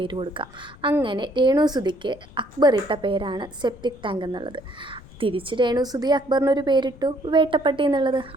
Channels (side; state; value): left; noise; rumble, 22 dB below the sound